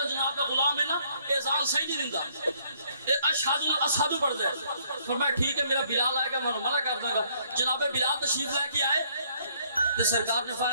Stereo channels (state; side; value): inverted; both; correlation -0.65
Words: جناب کا غلام ہے نا اذان صحیح نہیں دیندا، اشہدو پڑھ دے. فرمایا ٹھیک ہے میرا بلال آئے گا میں منع کر دوں گا. جناب بلال تشریف لے کے آئے تو سرکار نے